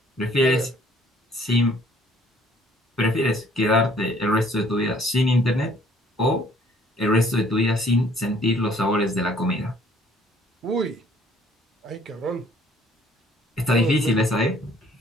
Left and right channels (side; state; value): both; normal; correlation 0.59